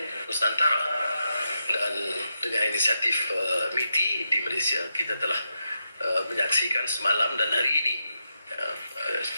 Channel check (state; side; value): inverted; both; correlation -0.86